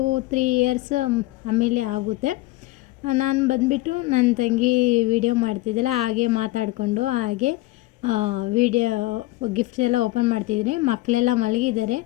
ಇಯರ್ಸ್ ಆಮೇಲೆ ಆಗುತ್ತೆ. ನಾನು ಬಂದುಬಿಟ್ಟು ನನ್ನ ತಂಗಿ ವಿಡಿಯೋ ಮಾಡ್ತಿದ್ದೆಲ್ಲ, ಹಾಗೆ ಮಾತಾಡಿಕೊಂಡು ಹಾಗೆ ವಿಡಿಯೋ ಗಿಫ್ಟ್ಸ್ ಎಲ್ಲ ಓಪನ್ ಮಾಡ್ತಿದ್ದೀನಿ. ಮಕ್ಕಳೆಲ್ಲ ಮಲಗಿದ್ದಾರೆ,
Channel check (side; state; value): right; quieter; 18.8 dB